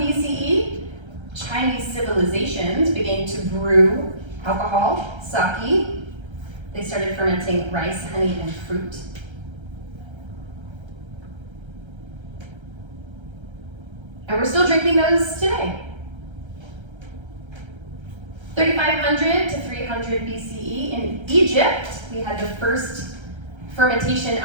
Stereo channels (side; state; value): left; late; 1.3 ms